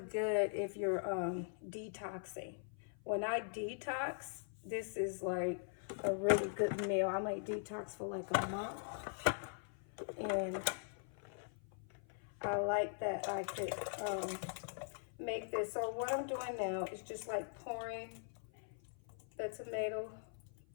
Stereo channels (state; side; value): silent; right; 50 dB below the other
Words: if you're detoxing. When I detox, this is like a really good meal. I might detox for like a month, and I like that I could make this. So what I'm doing now is just like pouring the tomato